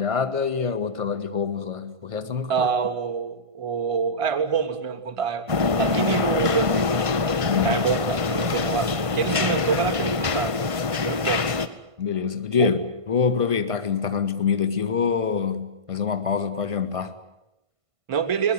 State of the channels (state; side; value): late; left; 1.5 ms